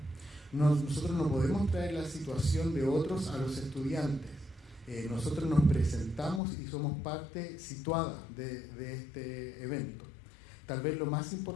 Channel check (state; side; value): drops out; right; at 6.4 s